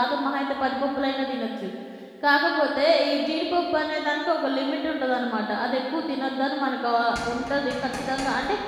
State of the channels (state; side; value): identical; both; correlation 1.00